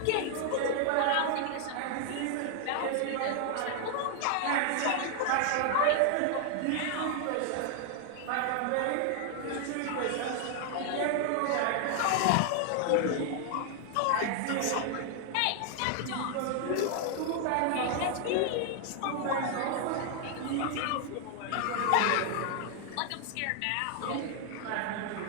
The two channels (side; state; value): both; different; correlation 0.00